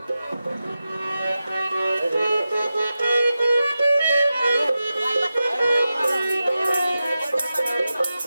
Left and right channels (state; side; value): inverted; both; correlation -0.92